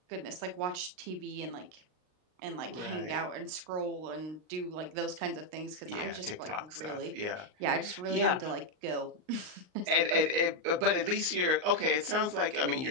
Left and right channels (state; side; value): late; left; 39 ms